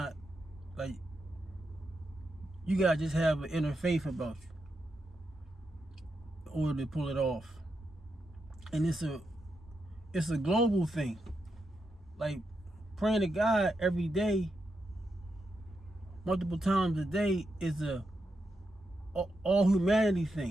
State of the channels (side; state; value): both; normal; correlation 0.85